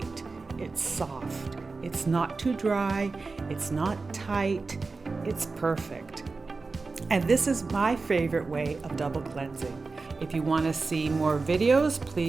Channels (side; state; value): left; quieter; 4.0 dB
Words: it's soft, it's not too dry, it's not tight, it's perfect. And this is my favorite way of double cleansing. If you want to see more videos,